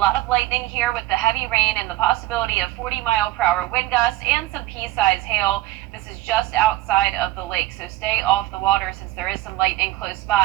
of lightning here with the heavy rain and the possibility of 40-mile-per-hour wind gusts and some pea-sized hail. This is just outside of the lake. Lake, so stay off the water since there is some lightning close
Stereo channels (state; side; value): quieter; left; 16.9 dB